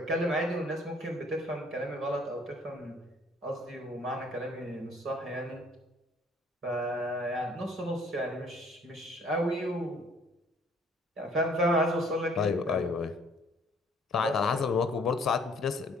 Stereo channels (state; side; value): normal; both; correlation 0.59